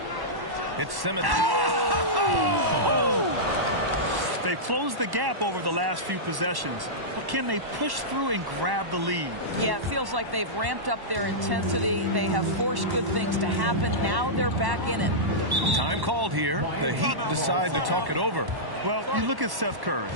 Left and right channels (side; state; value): left; late; 1.1 ms